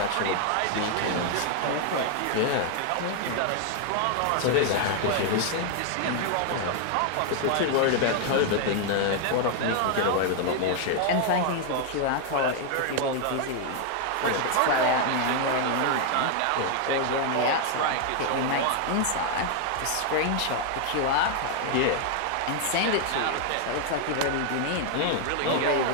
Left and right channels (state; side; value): different; both; correlation 0.00